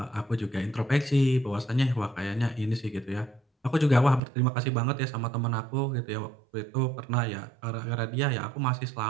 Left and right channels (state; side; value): drops out; left; at 4.2 s